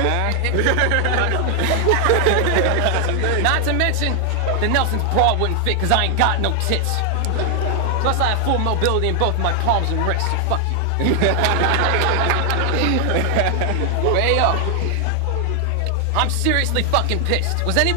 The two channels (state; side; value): different; both; correlation 0.00